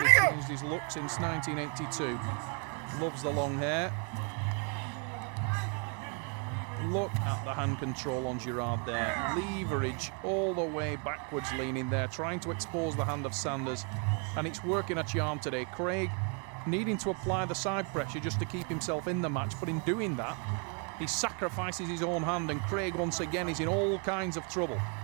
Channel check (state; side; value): quieter; left; 38.2 dB